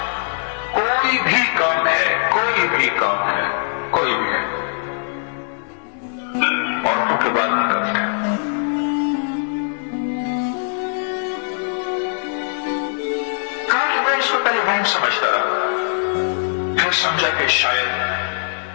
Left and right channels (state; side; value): silent; right; 65 dB below the other